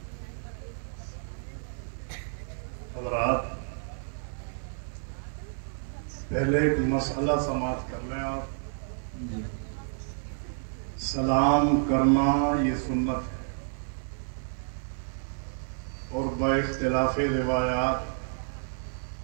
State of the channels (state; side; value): silent; left; 58 dB below the other